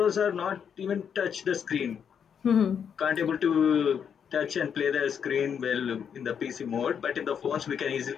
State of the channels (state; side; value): quieter; right; 7.6 dB